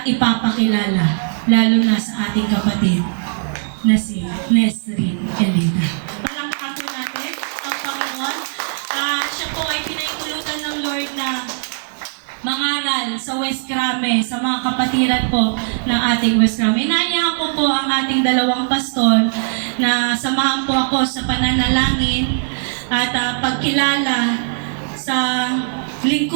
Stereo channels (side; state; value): left; silent; digital silence